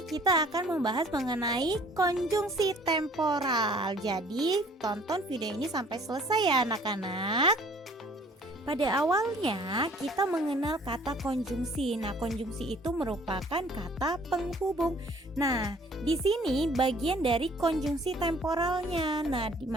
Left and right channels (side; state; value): both; normal; correlation 0.55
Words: kita akan membahas mengenai konjungsi temporal. Jadi, tonton video ini sampai selesai ya anak-anak. Pada awalnya kita mengenal kata konjungsi. Nah, konjungsi itu merupakan kata penghubung. Nah, di sini bagian dari konjungsi temporalnya. Nah, di